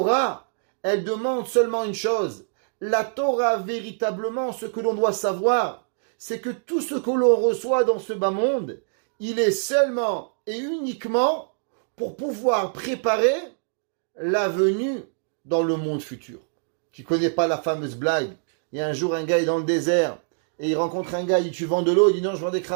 elle demande seulement une chose. La Torah, véritablement, ce que l'on doit savoir, c'est que tout ce que l'on reçoit dans ce bas monde, il est seulement et uniquement pour pouvoir préparer la venue dans le monde futur. Tu ne connais pas la fameuse blague? Il y a un jour un gars est dans le désert et il rencontre un gars, il dit tu vends de l'eau? Il dit non, je vends des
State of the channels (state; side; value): silent; left; digital silence